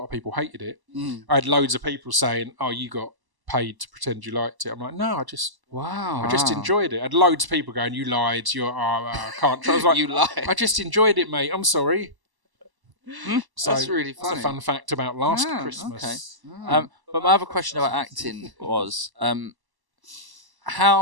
of people hated it. I had loads of people saying, "Oh, you got paid to pretend you liked it." I'm like, "No, I just enjoyed it." I had loads of people going, "You lied. I can't." I was like, You lied. I just enjoyed it, mate. I'm sorry. So That's really that's funny. a fun fact about Last Ah, Christmas. okay. But my other question about acting was,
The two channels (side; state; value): left; late; 1.0 ms